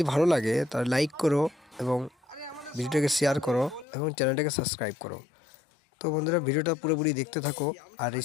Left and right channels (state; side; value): drops out; right; at 3.9 s